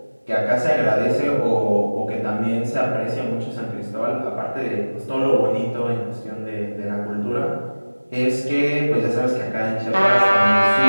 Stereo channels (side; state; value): both; inverted; correlation -1.00